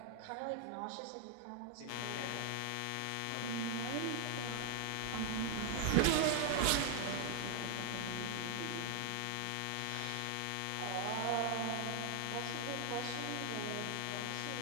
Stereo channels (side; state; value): both; different; correlation 0.00